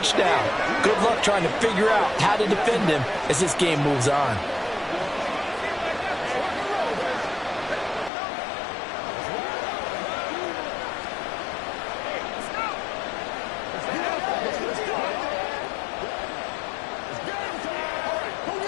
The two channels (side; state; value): right; drops out; at 8.1 s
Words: Good luck trying to figure out how to defend him as this game moves on.